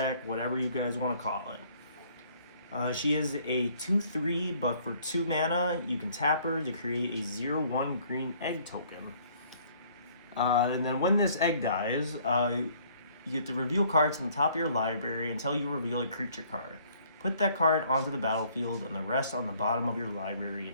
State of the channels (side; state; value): both; inverted; correlation -0.60